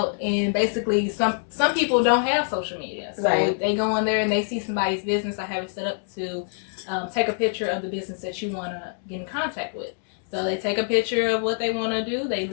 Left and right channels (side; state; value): right; silent; 62 dB below the other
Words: And basically, some people don't have social media. So they go in there and they see somebody's business. I have it set up to take a picture of the business that you want to get in contact with. So they take a picture of what they want to do. They